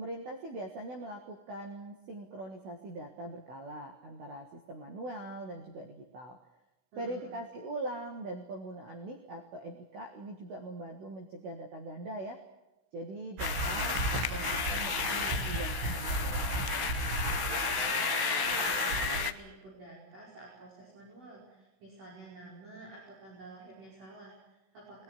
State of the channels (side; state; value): left; late; 16 ms